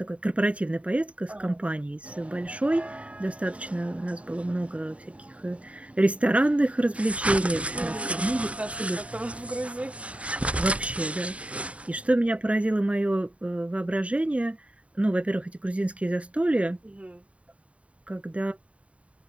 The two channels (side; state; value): left; late; 0.064 ms